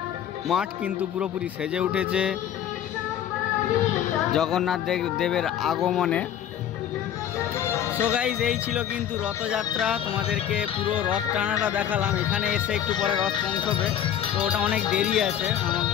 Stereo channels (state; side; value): quieter; right; 10.0 dB